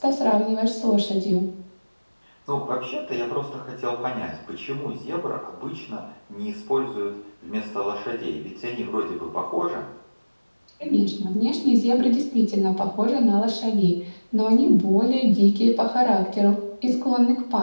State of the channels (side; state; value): both; inverted; correlation -1.00